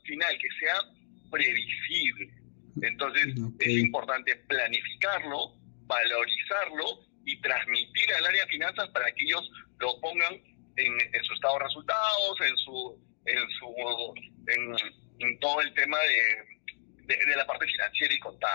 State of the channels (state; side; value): silent; right; digital silence